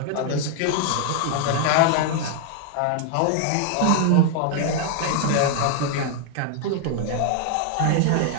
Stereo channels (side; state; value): both; different; correlation 0.00